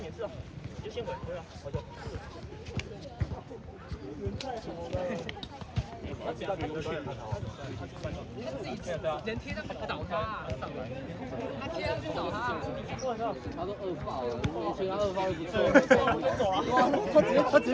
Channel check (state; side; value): identical; both; correlation 1.00